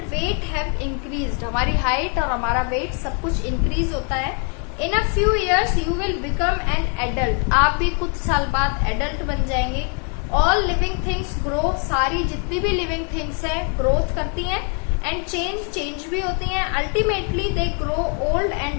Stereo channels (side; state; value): right; quieter; 39.6 dB